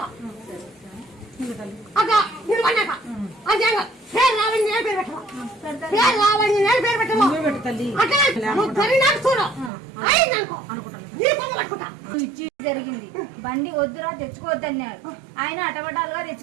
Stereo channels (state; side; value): drops out; left; at 9.7 s